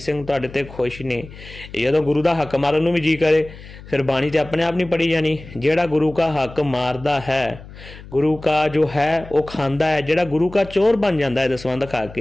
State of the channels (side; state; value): left; noise; hum, 17 dB below the sound